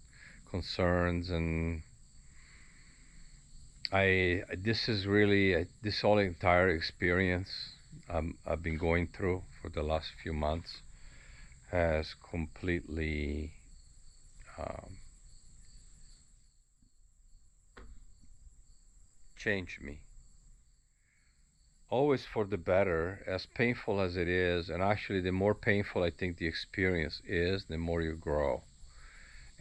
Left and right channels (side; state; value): both; identical; correlation 1.00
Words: concerns. And I this is really this whole entire experience I've been going through for the last few months has completely um, changed me, always for the better, as painful as it is. And actually, the more painful I think the experience is, the more you grow.